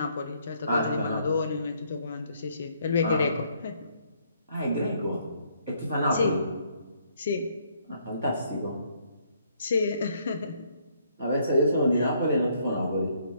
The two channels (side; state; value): both; inverted; correlation -0.68